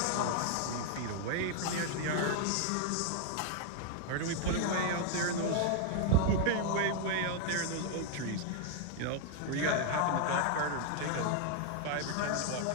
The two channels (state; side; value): different; both; correlation 0.00